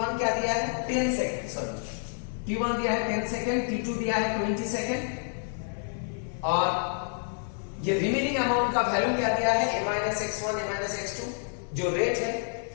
क्या दिया है 10 सेकेंड, सॉरी T1 दिया है 10 सेकेंड, T2 दिया है 20 सेकेंड, और ये रिमेनिंग अमाउंट का वैल्यू क्या दिया है A minus x1 A minus x2, जो रेट है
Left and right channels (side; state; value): right; silent; 57 dB below the other